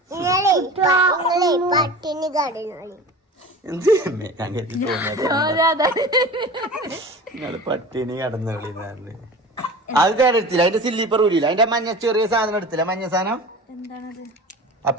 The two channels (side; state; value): both; normal; correlation 0.36